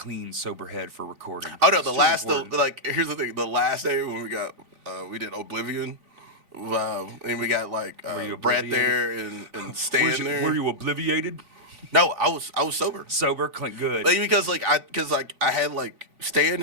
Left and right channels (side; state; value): left; late; 3.4 ms